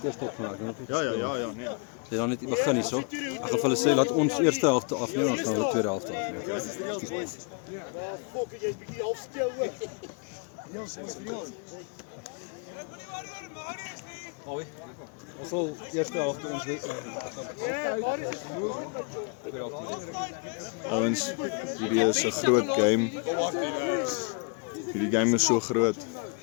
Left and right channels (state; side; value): quieter; right; 36.9 dB